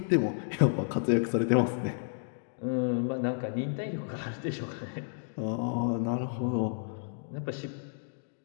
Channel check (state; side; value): silent; right; digital silence